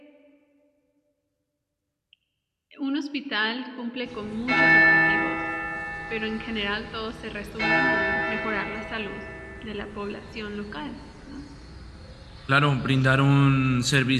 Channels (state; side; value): identical; both; correlation 1.00